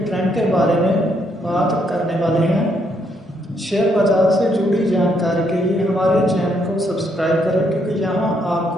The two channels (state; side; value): normal; both; correlation 0.74